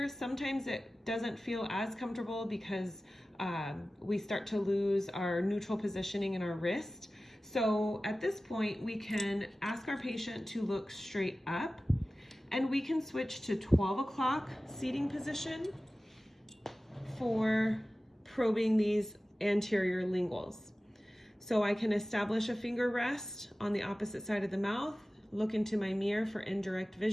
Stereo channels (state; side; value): normal; both; correlation 0.96